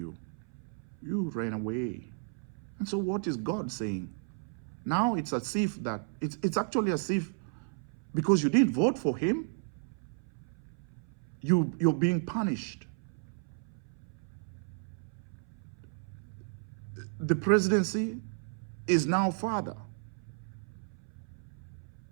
you ran away. And so what is God saying? Now it's as if that, it's actually as if because you didn't vote for him, you're being punished. The presidency is now father.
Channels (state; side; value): silent; left; 56 dB below the other